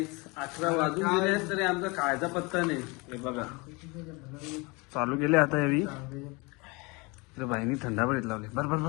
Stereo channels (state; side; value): quieter; right; 27.1 dB